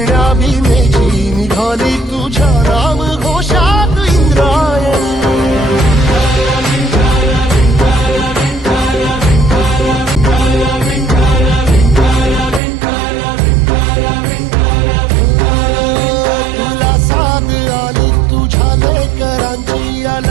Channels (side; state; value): left; drops out; at 12.6 s